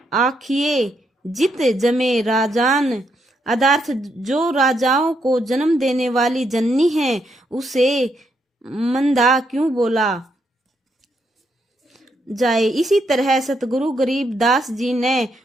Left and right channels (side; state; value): both; normal; correlation 0.78